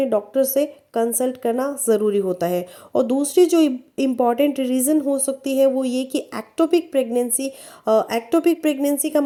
डॉक्टर से कंसल्ट करना ज़रूरी होता है। और दूसरी जो इम्पॉर्टेंट रीज़न हो सकती है वो ये कि एक्टोपिक प्रेगनेंसी। एक्टोपिक प्रेगनेंसी का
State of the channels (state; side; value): identical; both; correlation 1.00